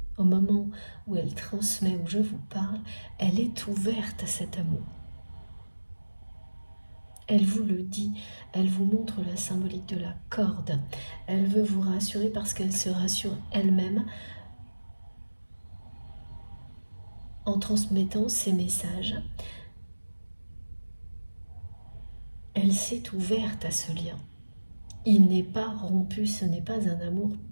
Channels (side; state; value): both; inverted; correlation -1.00